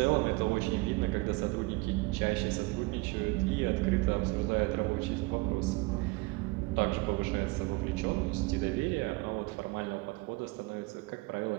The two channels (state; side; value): quieter; left; 24.0 dB